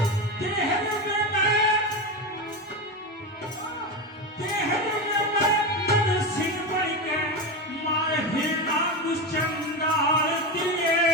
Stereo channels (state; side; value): normal; both; correlation 0.17